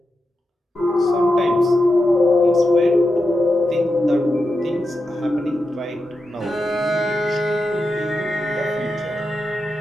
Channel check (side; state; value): both; normal; correlation 0.89